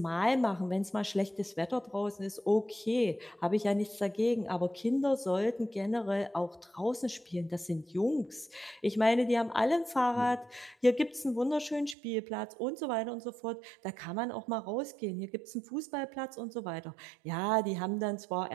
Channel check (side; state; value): left; drops out; at 12.0 s